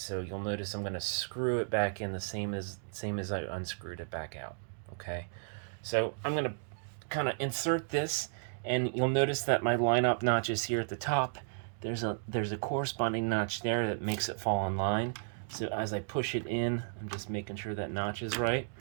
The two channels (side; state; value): left; silent; digital silence